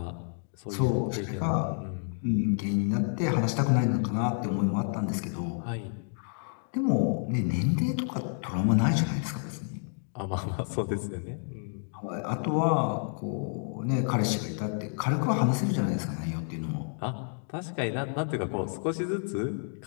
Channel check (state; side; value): silent; right; 58 dB below the other